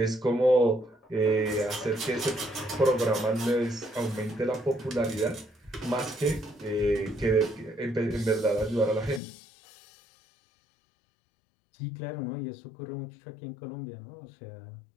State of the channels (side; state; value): right; drops out; at 9.2 s